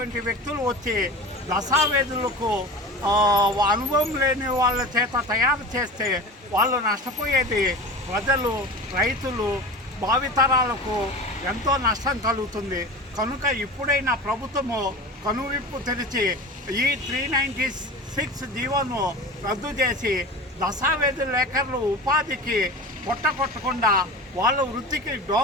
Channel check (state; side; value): normal; both; correlation 0.32